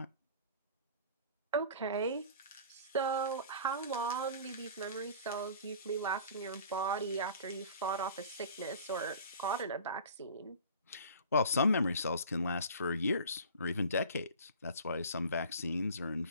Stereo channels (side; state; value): both; inverted; correlation -0.43